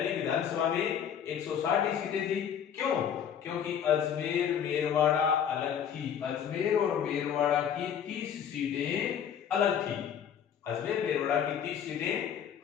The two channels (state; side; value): quieter; right; 8.5 dB